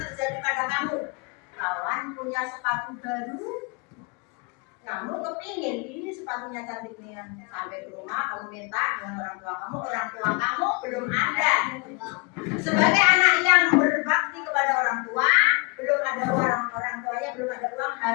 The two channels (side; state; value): right; quieter; 31.9 dB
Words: pada kamu. Kawan punya sepatu baru, kamu kepingin ini sepatunya cantik nih. Sampai ke rumah kamu minta dengan orang tua kamu belum ada. Sebagai anak yang berbakti kepada orang tua, belum ada orang tuanya, belum ada uang,